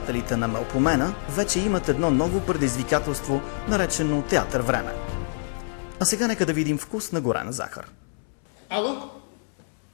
на Мелпомена вече имат едно ново предизвикателство, наречено театър «Време». А сега нека да видим вкус на горена захар. Ало?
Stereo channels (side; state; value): right; silent; 61 dB below the other